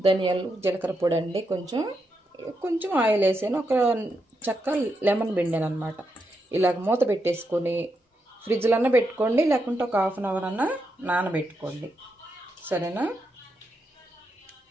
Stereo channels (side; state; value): both; normal; correlation 0.83